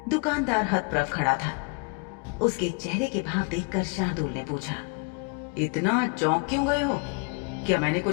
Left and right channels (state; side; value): quieter; right; 31.5 dB